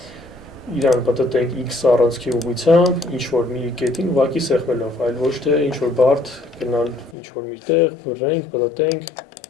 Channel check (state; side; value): drops out; right; at 7.2 s